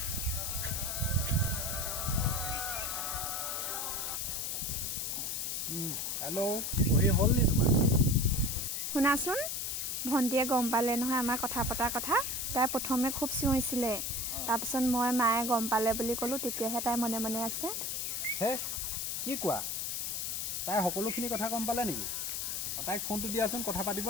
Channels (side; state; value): left; noise; hiss, 2 dB below the sound